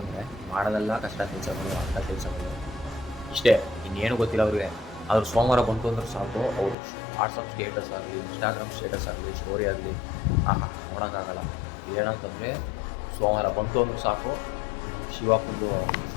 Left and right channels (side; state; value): right; drops out; at 6.8 s